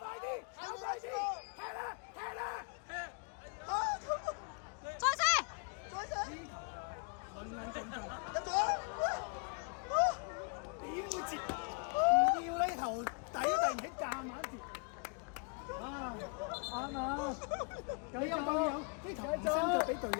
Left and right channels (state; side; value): quieter; right; 35.3 dB